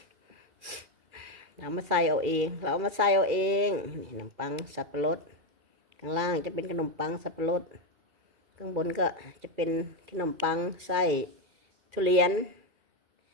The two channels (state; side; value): late; left; 2.3 ms